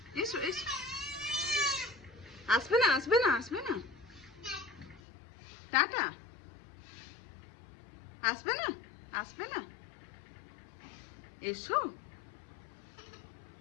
এসো এসো। আসবে না আসবে না আসবে না, টাটা। আসবে না আসবে না, এসো।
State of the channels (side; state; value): right; drops out; at 5.0 s